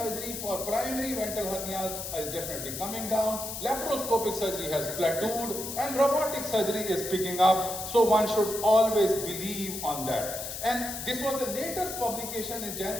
for primary ventral hernias is definitely coming down, laparoscopic surgery has plateaued, and robotic surgery is picking up. So one should always believe on that. And this was the latest publication in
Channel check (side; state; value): left; noise; hiss, 7 dB below the sound